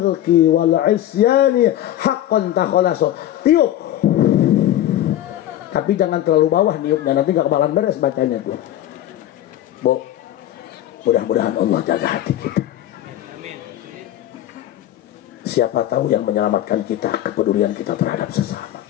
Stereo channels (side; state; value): right; quieter; 12.6 dB